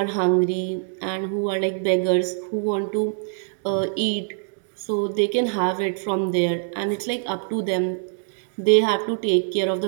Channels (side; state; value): left; silent; 63 dB below the other